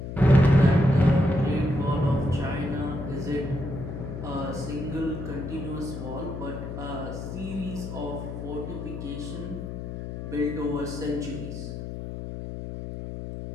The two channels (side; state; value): left; noise; hum, 7 dB below the sound